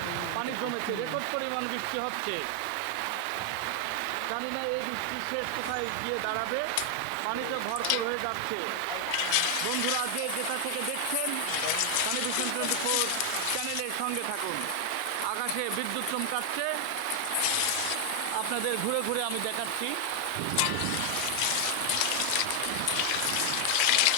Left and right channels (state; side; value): different; both; correlation 0.00